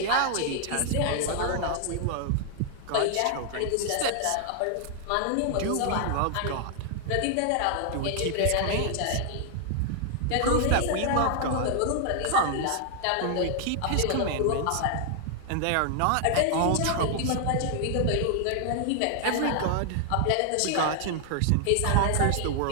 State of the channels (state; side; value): different; both; correlation 0.00